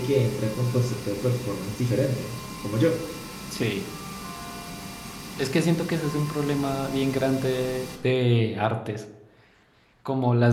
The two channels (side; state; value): both; identical; correlation 1.00